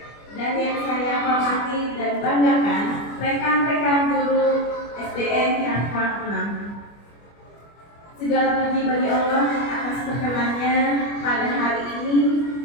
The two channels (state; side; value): late; right; 25 ms